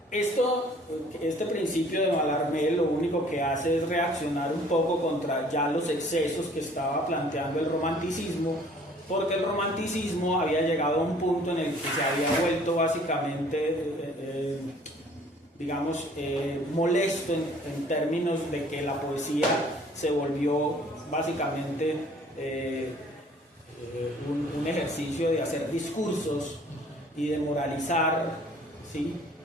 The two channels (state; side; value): normal; both; correlation 0.55